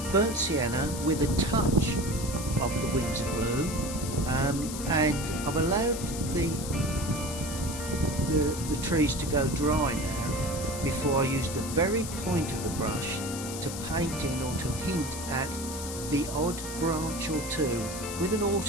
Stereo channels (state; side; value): noise; left; hiss, 8 dB below the sound